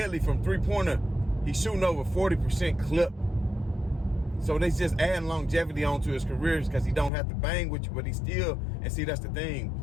from three-pointer. He's shooting over 40% clip. So they just adding longevity onto his career because he don't have to bang with you, but he still, and see, that's the thing.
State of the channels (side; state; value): right; drops out; at 7.1 s